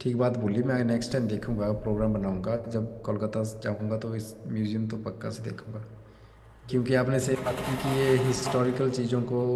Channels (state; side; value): identical; both; correlation 1.00